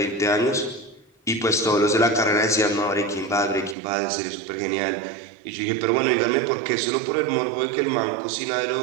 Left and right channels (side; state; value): left; drops out; at 3.8 s